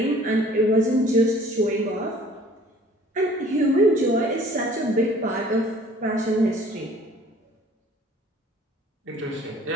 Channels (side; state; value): both; normal; correlation 0.53